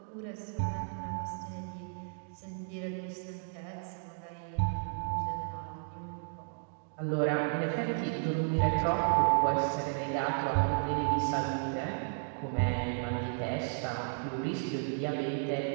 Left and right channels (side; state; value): left; silent; 55 dB below the other